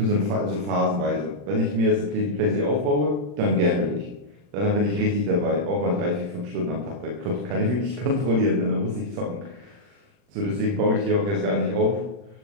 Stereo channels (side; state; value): left; late; 40 ms